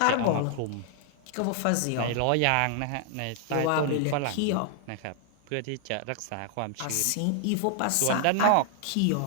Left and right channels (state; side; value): different; both; correlation 0.00